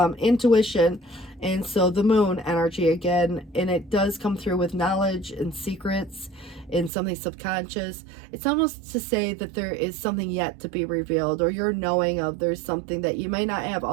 intuition, and so the moon energy again, and it does come through with knowledge and secrets and something subconscious. It's almost to say that there is something yet to be revealed, or you're knowing of there's something that you may not have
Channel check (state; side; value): drops out; left; at 6.9 s